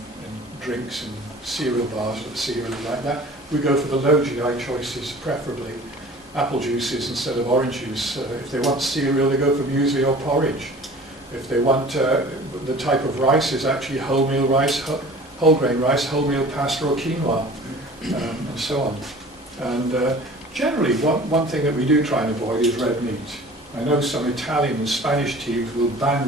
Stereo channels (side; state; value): both; normal; correlation 0.44